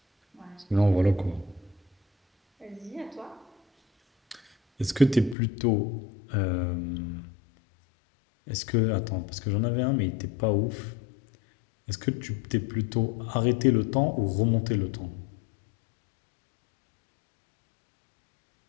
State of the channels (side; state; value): right; drops out; at 5.4 s